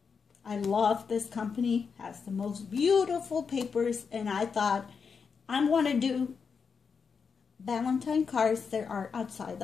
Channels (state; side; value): quieter; right; 5.8 dB